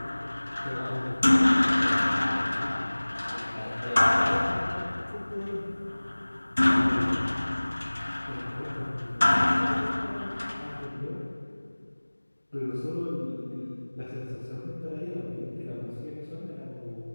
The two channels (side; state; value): both; inverted; correlation -1.00